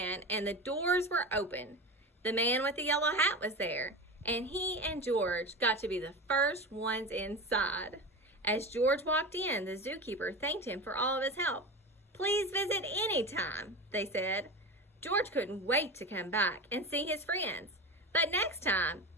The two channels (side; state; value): both; normal; correlation 0.26